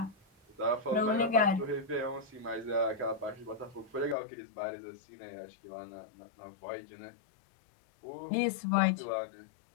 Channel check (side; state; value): right; drops out; at 4.2 s